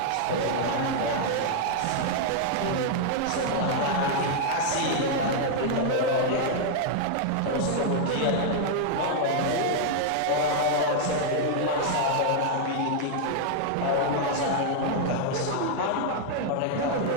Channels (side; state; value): both; different; correlation 0.00